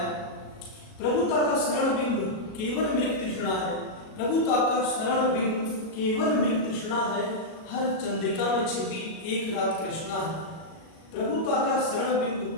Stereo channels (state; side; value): late; right; 37 ms